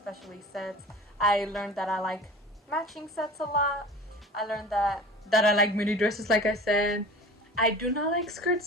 sets. I learned that I like matching sets a lot. I learned that I like mini dresses, like I said. I do not like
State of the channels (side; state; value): both; normal; correlation 0.39